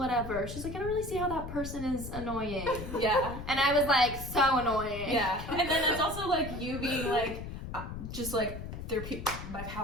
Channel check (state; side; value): noise; left; rumble, 8 dB below the sound